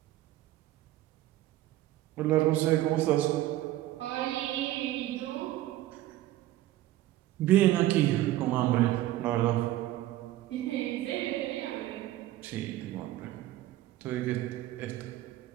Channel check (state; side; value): quieter; left; 14.9 dB